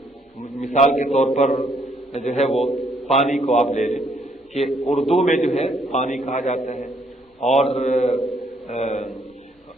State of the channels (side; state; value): both; normal; correlation 0.69